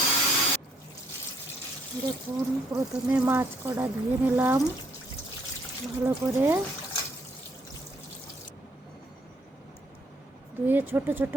দেখুন, প্রথমে মাছ কটা ধুয়ে নিলাম ভালো করে। ধুয়ে ছোট ছোট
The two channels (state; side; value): normal; both; correlation 0.67